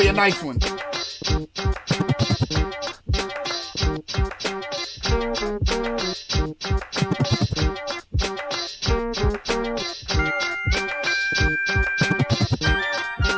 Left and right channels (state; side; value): identical; both; correlation 1.00